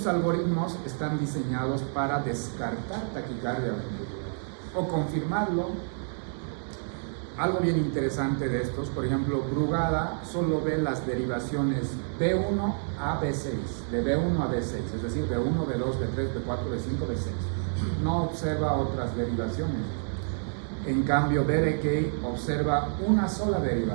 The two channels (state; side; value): silent; left; digital silence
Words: algoritmos están diseñados para descartar taquicardia ventricular o confirmarlo. Algo bien interesante de estos, por ejemplo, Brugada solo ve las derivaciones B1 a B6, de B1 a B6, es decir, B1, B2, B3, B4, B5, B6. No observa otras derivaciones. En cambio, Berekei observa una sola